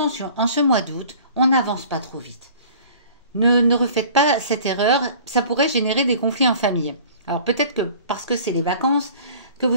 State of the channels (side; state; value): both; inverted; correlation -0.47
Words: en ce mois d'août, on n'avance pas trop vite. Ne refaites pas cette erreur, ça pourrait générer des conflits en famille. Alors peut-être que parce que c'est les vacances, que